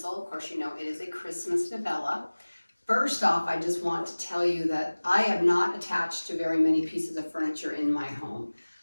Of course, you know it is a Christmas novella. First off, I just want to tell you that I am not attached to very many pieces of furniture in my home.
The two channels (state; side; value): inverted; both; correlation -1.00